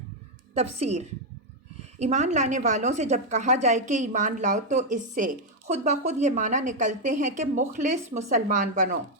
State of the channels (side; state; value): both; normal; correlation 0.01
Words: تفسیر۔ ایمان لانے والوں سے جب کہا جائے کہ ایمان لاؤ تو اس سے خود بخود یہ معنی نکلتے ہیں کہ مخلص مسلمان بنو،